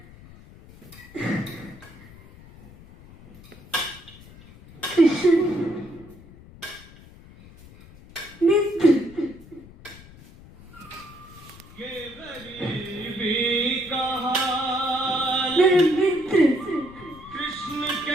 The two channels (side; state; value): left; noise; rumble, 20 dB below the sound